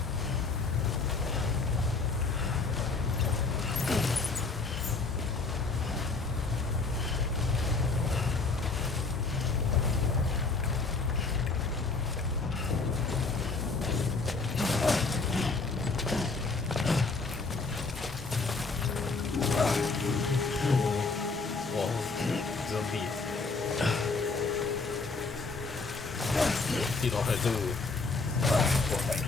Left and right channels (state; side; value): quieter; right; 4.0 dB